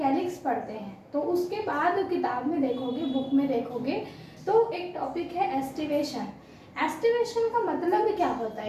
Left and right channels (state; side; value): identical; both; correlation 1.00